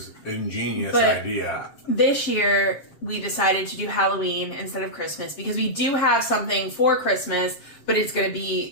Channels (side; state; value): right; late; 7.6 ms